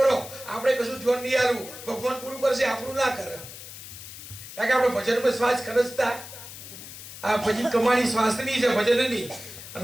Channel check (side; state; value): left; noise; hiss, 13 dB below the sound